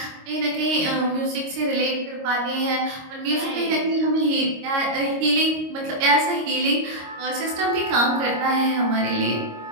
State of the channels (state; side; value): late; left; 26 ms